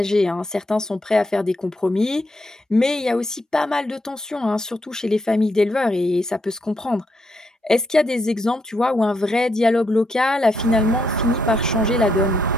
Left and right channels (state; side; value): normal; both; correlation 0.78